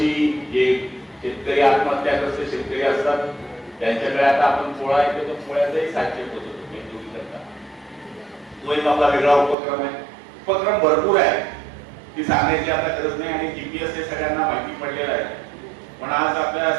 जे शेतकरी आत्महत्याग्रस्त शेतकरी असतात त्यांच्याकडे आता आपण पोळा येतो, तर पोळ्याचाही साहित्य होतो तो एक आपला वेगळा उपक्रम आहे. उपक्रम भरपूर आहे, ती सांगायची आता गरज नाही आणि जीपीएस हे सगळ्यांना माहिती पडलेलं आहे. पण आज आपल्या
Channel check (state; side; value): drops out; left; at 9.6 s